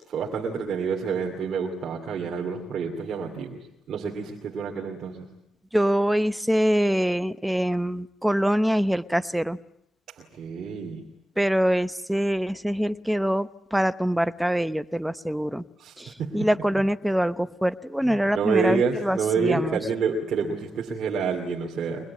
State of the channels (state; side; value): normal; both; correlation 0.91